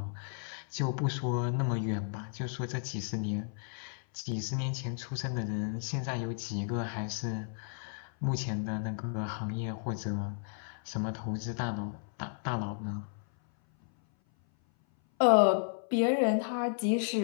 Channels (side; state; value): right; silent; 56 dB below the other